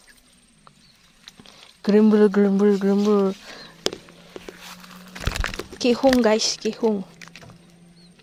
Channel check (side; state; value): both; identical; correlation 1.00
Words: gerembul. Kihung guys, kihung.